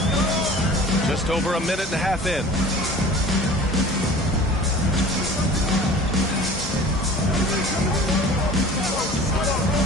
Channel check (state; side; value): normal; both; correlation 0.43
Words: Just over a minute and a half in.